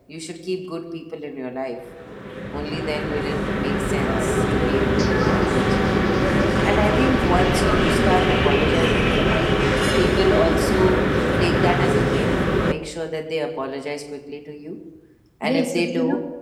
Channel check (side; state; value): both; identical; correlation 1.00